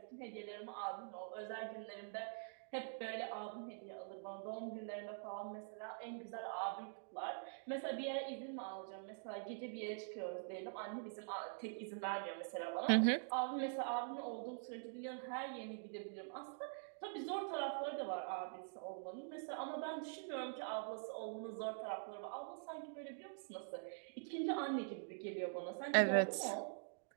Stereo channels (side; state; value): left; silent; digital silence